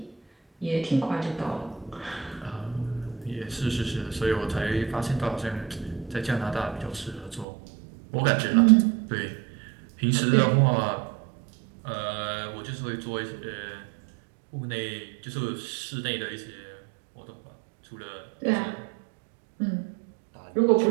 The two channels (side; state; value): left; drops out; at 7.5 s